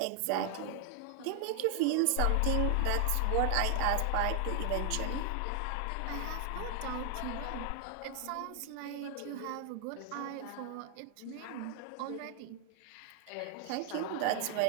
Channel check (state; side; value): different; both; correlation 0.00